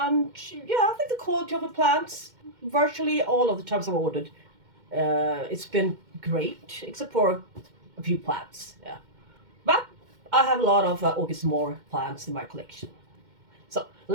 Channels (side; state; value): left; late; 2.1 ms